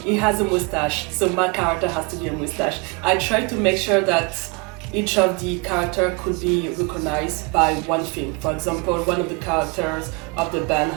he has a mustache, so my character has to be a mustache. I tried to make sure that each of the characters could be recognized by one thing. For example, one of the characters of the band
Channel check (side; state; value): left; quieter; 30.0 dB